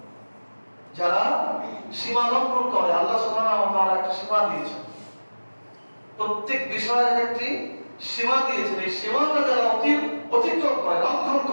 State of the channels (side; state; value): both; inverted; correlation -1.00